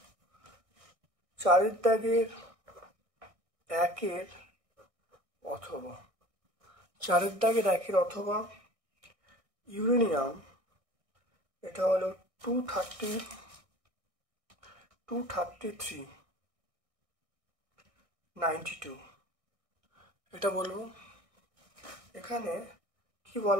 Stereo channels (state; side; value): late; left; 1.6 ms